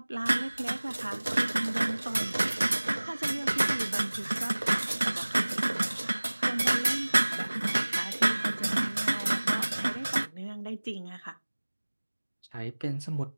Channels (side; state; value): both; inverted; correlation -1.00